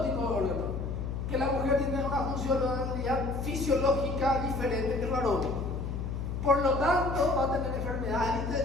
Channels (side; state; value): left; noise; hum, 4 dB below the sound